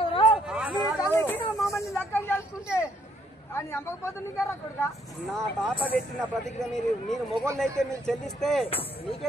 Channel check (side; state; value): both; normal; correlation 0.69